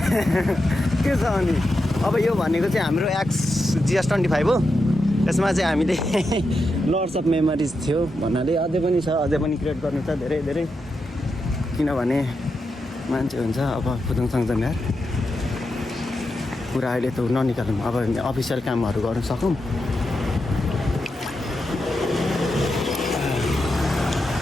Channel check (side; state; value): both; normal; correlation 0.87